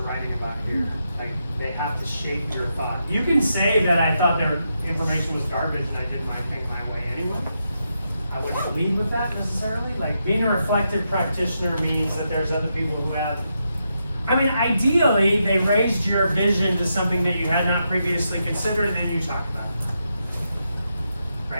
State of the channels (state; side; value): inverted; both; correlation -0.84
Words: writing about here. Like, they have to shape your thought. You can say that I thought their information was garbage and I did my thing my way anyway. I wouldn't believe with that necessarily. Like, being a reflective practitioner means that there's other people who have, I mean, ideally, they raised your vision to something that you had not previously considered, and then you talk about it.